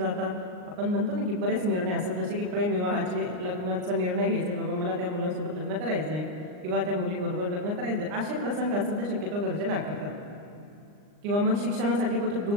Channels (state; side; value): late; left; 39 ms